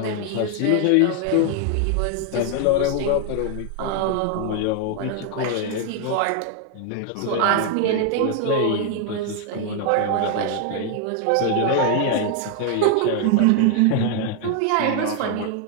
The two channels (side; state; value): both; different; correlation 0.00